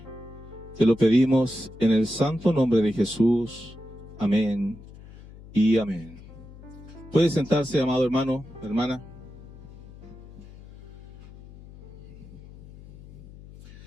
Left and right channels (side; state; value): left; noise; hum, 18 dB below the sound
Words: Te lo pedimos en el santo nombre de Jesús. Amén y amén. Puede sentarse, amado hermano, hermana.